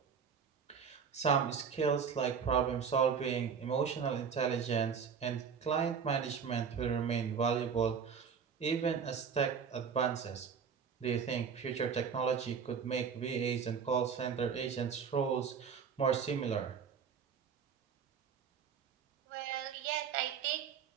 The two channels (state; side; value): quieter; left; 6.7 dB